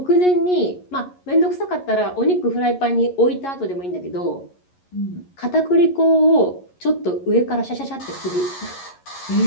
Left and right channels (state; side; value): late; right; 11 ms